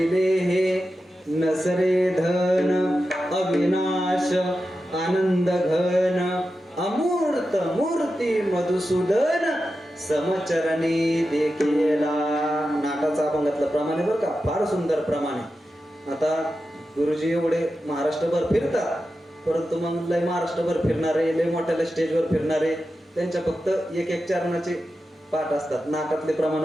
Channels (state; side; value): normal; both; correlation 0.91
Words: नसरे धन अविनाश आनंद घन अमूर्त मूर्ती मधुसूदन समचरणी देखीला. नाटाचा अभंगातलं प्रमाणे बरं का, फार सुंदर प्रमाणे. आता गुरुजी एवढे महाराष्ट्रभर फिरतात, परंतु मग लय महाराष्ट्रभर फिरणारे, लय मोठ्या स्टेजवर फिरणारे, त्यांच्या फक्त एक चरणाचे पाठ असतात, नाटातले